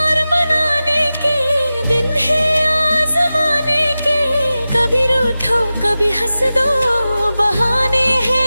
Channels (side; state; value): both; inverted; correlation -0.95